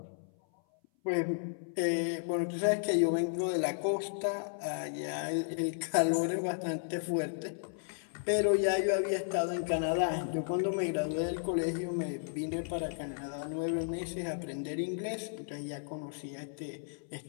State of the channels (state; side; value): silent; right; 55 dB below the other